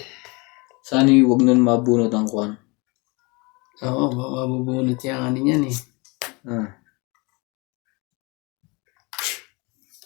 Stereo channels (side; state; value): right; quieter; 27.8 dB